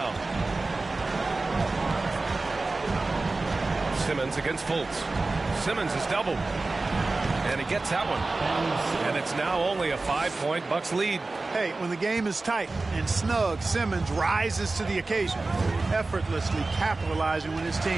Simmons against Fultz. Simmons is doubled. And he gets that one. And it's now only a 5-point Bucks lead. Hey, when the game is tight and snug, Simmons rises to the occasion, effortlessly capitalizing when his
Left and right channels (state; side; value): quieter; left; 3.4 dB